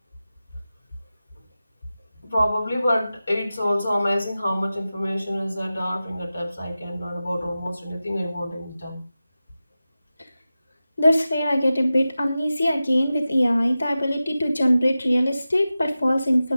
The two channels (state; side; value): inverted; both; correlation -0.94